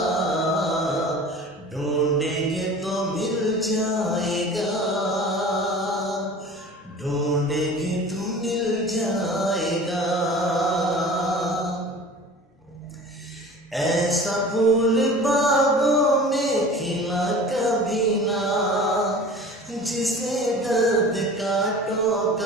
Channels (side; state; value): both; normal; correlation 0.40